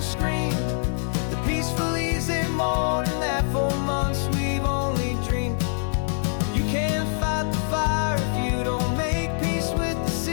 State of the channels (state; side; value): silent; right; digital silence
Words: scream, the peaceful easy morning that for months we've only dreamed. You can't fight the fire if you don't make peace with the